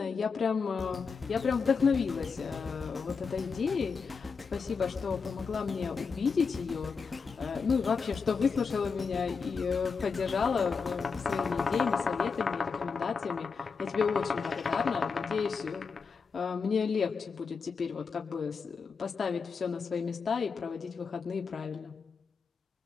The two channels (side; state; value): right; quieter; 5.3 dB